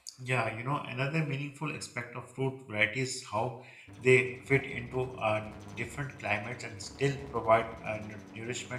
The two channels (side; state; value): both; identical; correlation 1.00